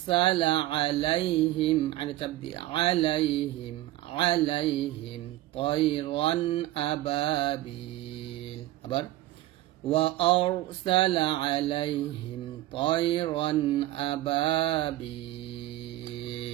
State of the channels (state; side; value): quieter; left; 16.0 dB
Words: عليهم على تبدي عليهم طيرا أبابيل أبر وأرسل عليهم طيرا